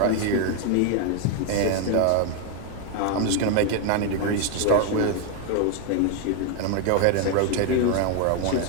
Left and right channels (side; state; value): both; different; correlation 0.01